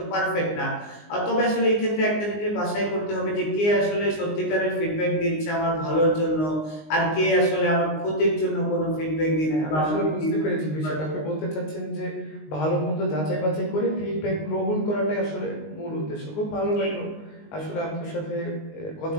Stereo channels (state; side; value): late; right; 19 ms